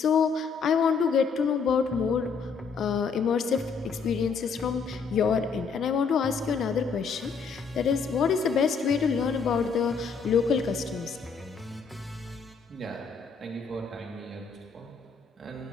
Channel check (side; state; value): right; quieter; 5.4 dB